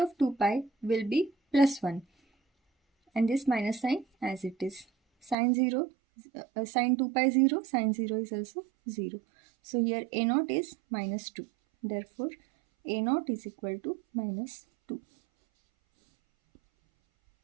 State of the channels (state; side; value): drops out; left; at 5.4 s